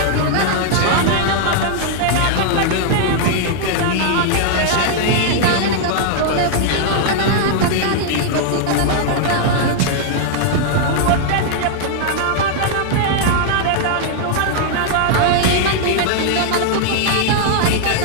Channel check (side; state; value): both; different; correlation 0.00